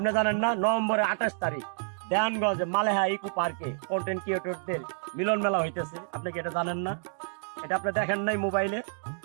জানেন না নভেম্বরের 28 তারিখ দেয়ানগঞ্জে মালেহা ইকো পার্কে কন্টেন্ট ক্রিয়েটরদের মিলন মেলা হইতেছে? আপনি কি এটা জানেন না? এটা আপনি দেখেন নাই মোবাইলে?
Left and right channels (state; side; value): silent; left; digital silence